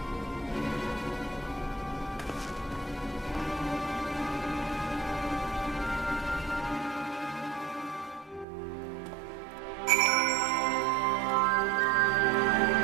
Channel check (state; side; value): drops out; left; at 8.5 s